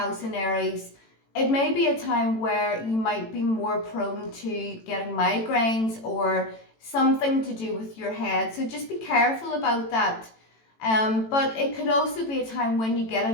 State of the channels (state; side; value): late; right; 18 ms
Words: in Aries, it may be a time where you might be more prone to getting migraines or something to do with your head. So just be careful about that. But it could also be a time when you get